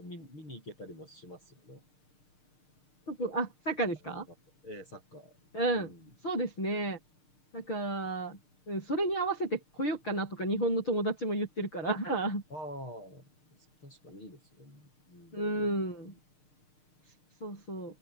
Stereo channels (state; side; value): late; right; 6.6 ms